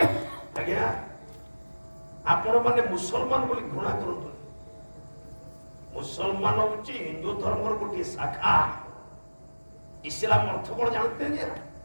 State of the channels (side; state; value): both; inverted; correlation -1.00